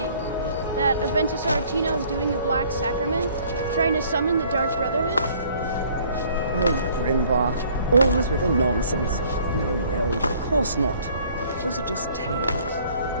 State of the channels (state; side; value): inverted; both; correlation -0.58